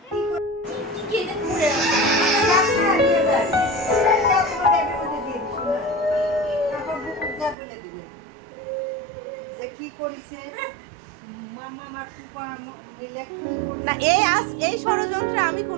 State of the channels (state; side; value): drops out; left; at 7.6 s